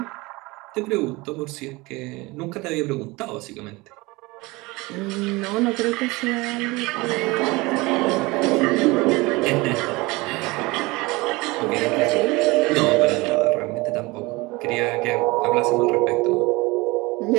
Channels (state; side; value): quieter; left; 23.1 dB